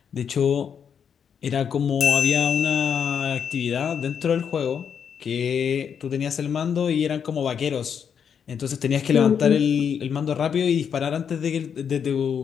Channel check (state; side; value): quieter; right; 7.5 dB